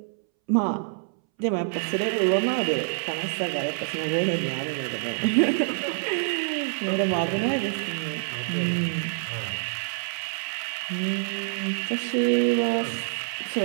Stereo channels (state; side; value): silent; left; 61 dB below the other